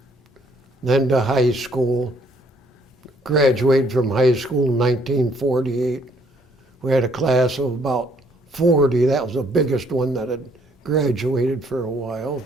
Then to high school. Graduated from high school in 1948. We had a class of about 40. That was the biggest one that had graduated for a while.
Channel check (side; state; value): both; normal; correlation 0.65